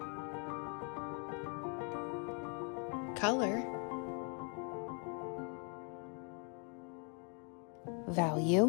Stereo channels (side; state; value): right; quieter; 37.9 dB